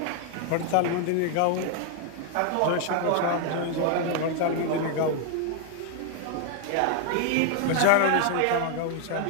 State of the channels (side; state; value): both; different; correlation 0.00